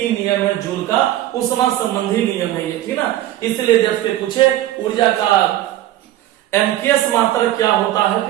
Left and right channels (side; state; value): left; quieter; 14.0 dB